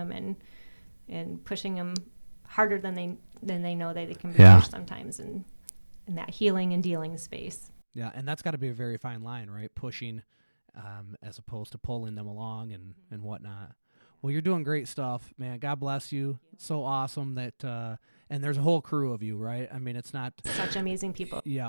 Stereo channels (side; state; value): both; inverted; correlation -1.00